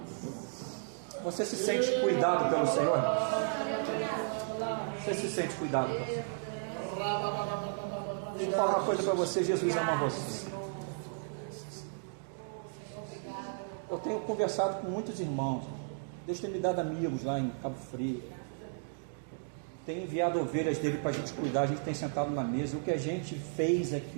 Você se sente cuidado pelo Senhor? Você se sente cuidado pelo Senhor? Deixa eu falar uma coisa para você, Jesus ama você. Eu tenho conversado com muitos irmãos. Deus tem me dado amigos lá em Cabo Frio. Tem enviado ovelhas dele para a gente cuidar. A gente tem sentado na mesa. O que a gente fez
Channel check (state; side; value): silent; left; digital silence